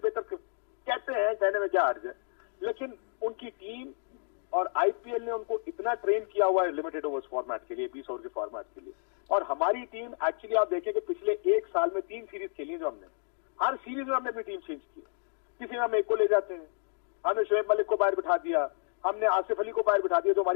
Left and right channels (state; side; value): silent; right; 57 dB below the other